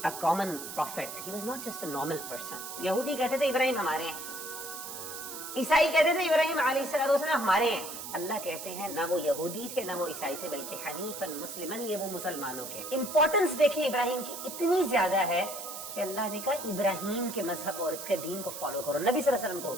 a common prophet. He was not just a normal person. یہودی کہتے تھے ابراہیم ہمارے ہیں، عیسائی کہتے تھے ابراہیم علیہ الصلوۃ والسلام ہمارے ہیں۔ اللہ کہتے ہیں نہ وہ یہودی تھے نہ وہ عیسائی تھے بلکہ حنیفاً مسلماً، یہ وہ مسلمانوں کے امپورٹنس دیکھیں ابراہیم کی اتنی زیادہ ہے کہ اللہ نے کہا ابراہیم کے مذہب اور اس کے دین کو فالو کرو۔ نبی صلی اللہ علیہ وسلم کو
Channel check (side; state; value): right; noise; hiss, 9 dB below the sound